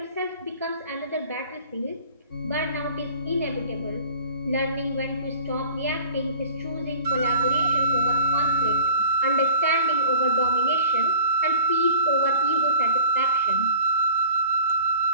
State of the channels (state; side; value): inverted; both; correlation -0.44